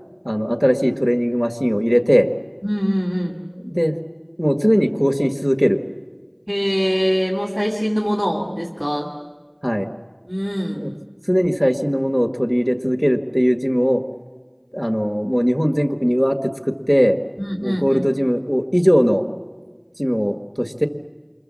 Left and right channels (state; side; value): identical; both; correlation 1.00